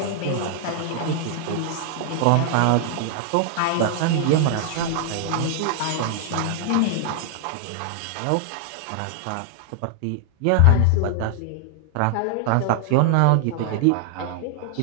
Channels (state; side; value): different; both; correlation 0.00